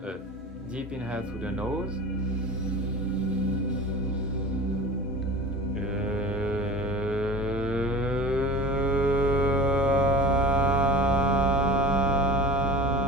a deep inhale through the nose.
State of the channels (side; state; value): both; normal; correlation 0.36